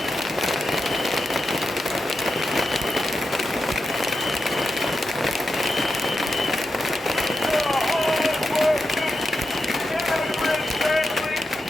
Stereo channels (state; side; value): normal; both; correlation 0.88